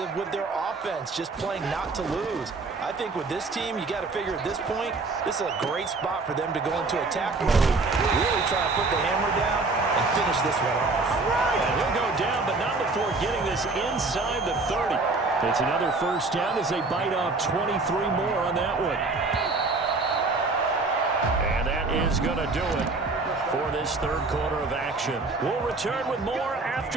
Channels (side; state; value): left; quieter; 3.6 dB